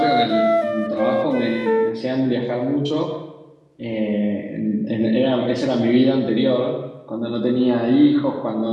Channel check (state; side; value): identical; both; correlation 1.00